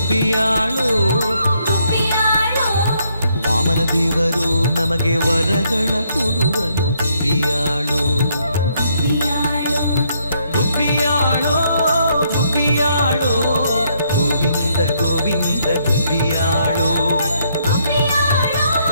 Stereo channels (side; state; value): both; inverted; correlation -0.72